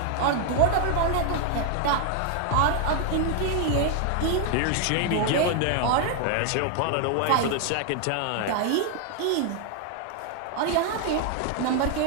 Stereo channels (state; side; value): different; both; correlation 0.00